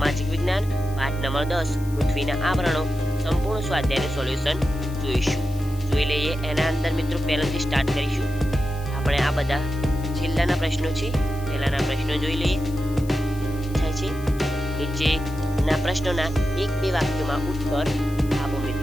વિજ્ઞાન પાઠ નંબર 10 પૃથ્વીના આવરણો સંપૂર્ણ સ્વાધ્યાયનું સોલ્યુશન જોઈશું. જોઈ લઈએ એના અંદર મિત્રો પહેલાથી સ્ટાર્ટ કરીશું. આપણે આ બધા છેલ્લાના પ્રશ્નો છે, પહેલાના પ્રશ્નો જોઈ લઈએ. થાય છે નીચેના પ્રશ્નોના 1-2 વાક્યોમાં ઉત્તર આપો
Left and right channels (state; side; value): noise; left; hiss, 20 dB below the sound